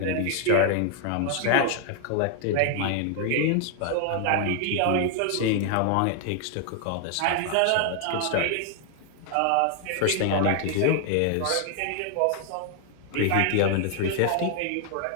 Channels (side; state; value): both; different; correlation 0.00